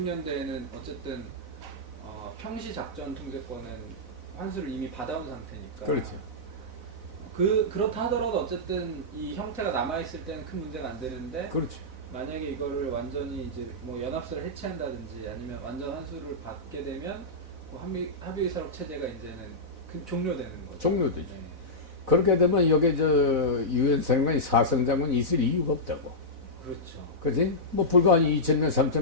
어쨌든 평시 작전 통제권은 환수를 이미 받아온 상태니까. 그렇죠. 그렇다 하더라도 어쨌든 이 형태가 남아 있을 때는 큰 문제가 안 되는데. 그렇죠. 만약에 이거를 완전히 이제 뭐 연합사를 해체한다든지 아니면 완전 환수를 받게 되면 그 합의의사록 체제가 이제는 종료되는 거죠. 종료되죠. 네. 그렇게 되면 여기 저 유엔 사령관이 사성장군이 있을 이유가 없다고. 그렇죠. 그렇지? 뭐 불과 한 2,000명,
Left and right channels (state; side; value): late; left; 4.0 ms